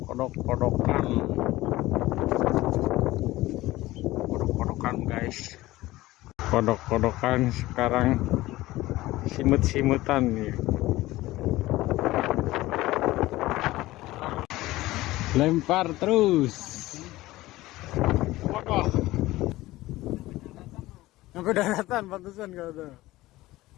kodok-kodokan guys, kodok-kodokan sekarang simut-simutan nih. Lempar terus. Wah, sampai daratan pantesan kata.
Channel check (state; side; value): quieter; right; 17.7 dB